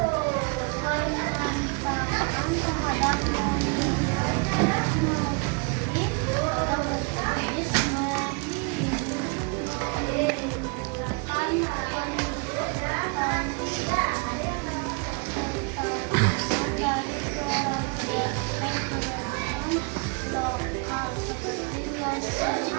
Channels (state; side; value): quieter; left; 33.8 dB